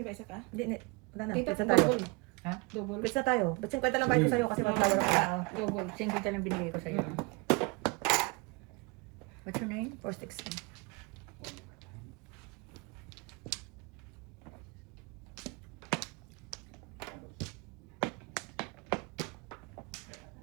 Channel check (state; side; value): quieter; left; 27.3 dB